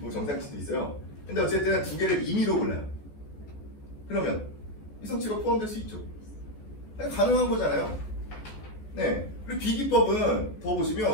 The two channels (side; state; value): right; late; 14 ms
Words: 정상치도 있어요. 근데 어쨌든 두 개를 임의로 골라요. 그러면 이상치가 포함될 수 있죠. 가능한 거잖아요. 네. 그리고 B기법은 더